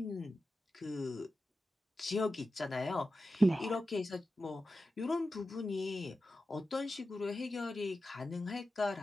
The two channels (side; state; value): both; normal; correlation 0.92